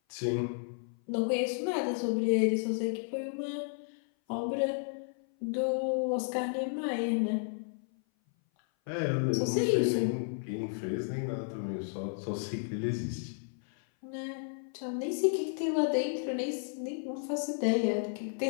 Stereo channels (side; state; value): right; silent; 56 dB below the other